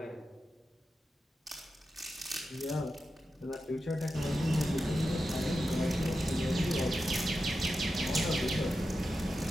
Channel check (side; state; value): both; normal; correlation 0.90